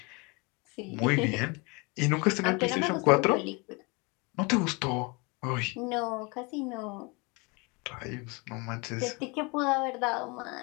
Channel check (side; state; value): right; quieter; 28.8 dB